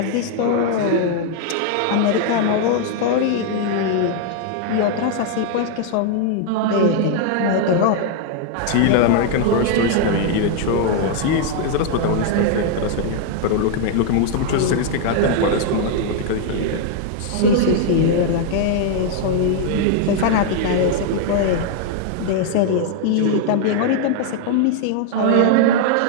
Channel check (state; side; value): different; both; correlation 0.00